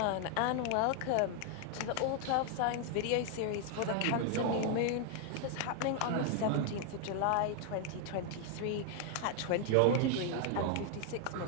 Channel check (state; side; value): different; both; correlation 0.00